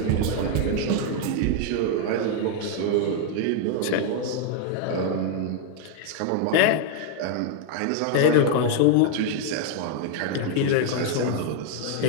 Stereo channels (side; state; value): both; different; correlation 0.00